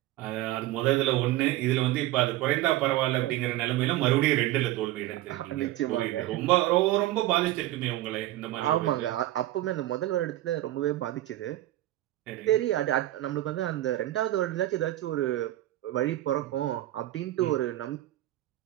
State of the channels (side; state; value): left; quieter; 15.4 dB